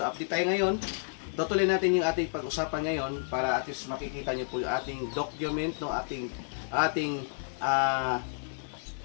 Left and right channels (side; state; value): right; silent; 57 dB below the other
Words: update tayo ngayon. Tutuloy natin yung ating pag-usapan ngayon para at least makikita nyo po yung ating document, no? Ating